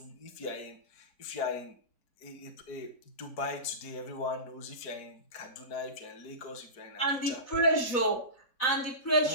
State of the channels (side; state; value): right; late; 4.0 ms